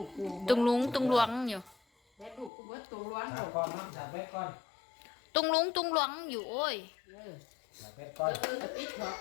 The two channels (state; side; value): drops out; right; at 2.5 s